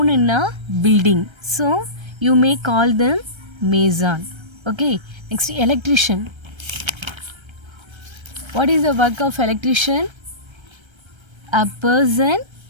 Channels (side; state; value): left; late; 1.3 ms